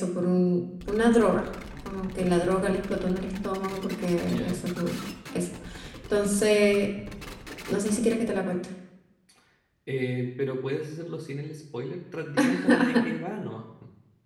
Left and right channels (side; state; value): both; identical; correlation 1.00